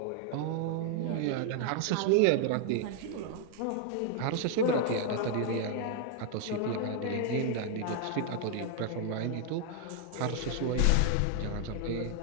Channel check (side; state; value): both; different; correlation 0.00